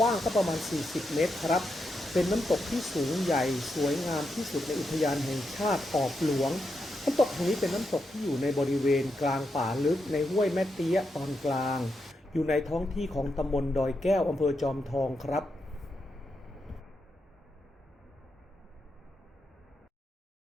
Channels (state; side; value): normal; both; correlation 0.84